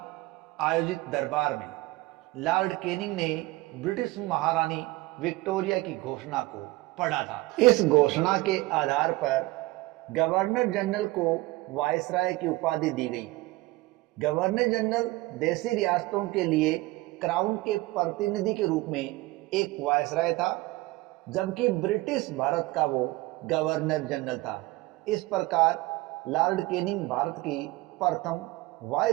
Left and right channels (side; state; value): left; quieter; 20.3 dB